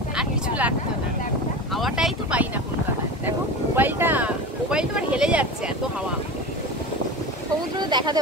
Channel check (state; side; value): normal; both; correlation 0.29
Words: আর কিছু লাগতো না। হাওয়াটাই তো পাই না কলকাতায়। দেখো মোবাইলটা আর হেলে যাচ্ছে, এত হাওয়া। সমুদ্র দেখাতে